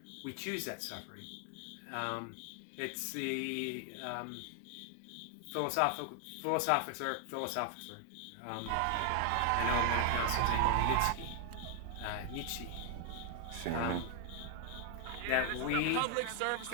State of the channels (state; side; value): different; both; correlation 0.00